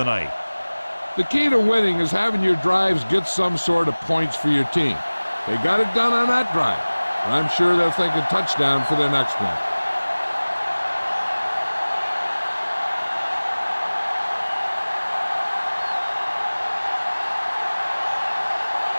night. The key to winning is having your drives get some sort of points for your team. They got it done on that drive. I'm sure they're thinking touchdown for their next one.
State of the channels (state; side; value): inverted; both; correlation -1.00